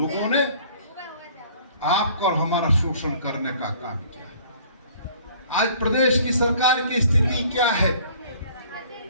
ने आपका और हमारा शोषण करने का काम किया। आज प्रदेश की सरकार की स्थिति क्या है?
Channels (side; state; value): both; inverted; correlation -0.54